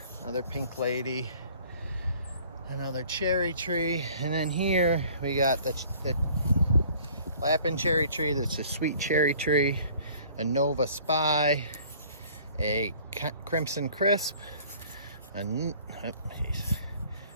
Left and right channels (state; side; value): inverted; both; correlation -0.53